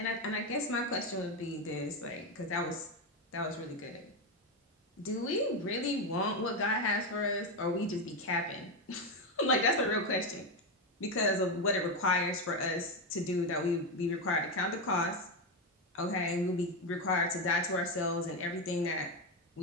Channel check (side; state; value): both; normal; correlation 0.10